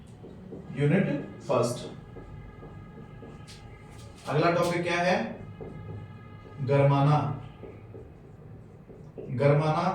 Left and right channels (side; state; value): both; identical; correlation 1.00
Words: यूनिट फर्स्ट, अगला टॉपिक क्या है? गरमाना।